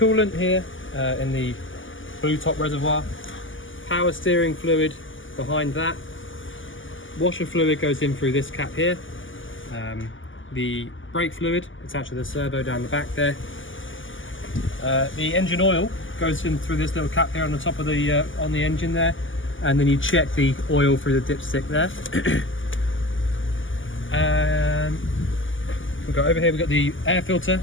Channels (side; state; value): right; late; 0.57 ms